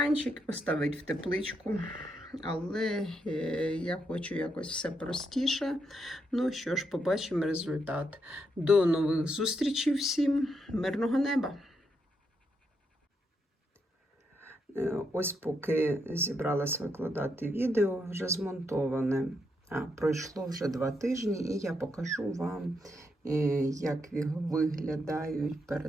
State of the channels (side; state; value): both; normal; correlation 0.80